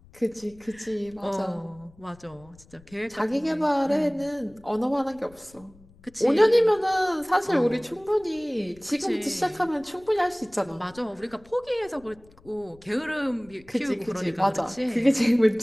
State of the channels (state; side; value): noise; left; rumble, 26 dB below the sound